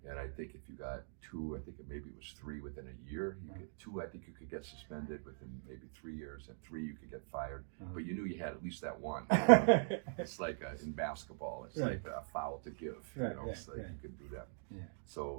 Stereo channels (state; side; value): silent; left; digital silence